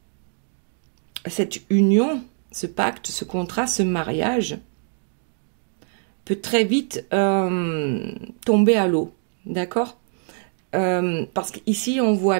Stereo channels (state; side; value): silent; left; 63 dB below the other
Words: cette union, ce pacte, ce contrat, ce mariage peut très vite tomber à l'eau, d'accord? Parce qu'ici, on voit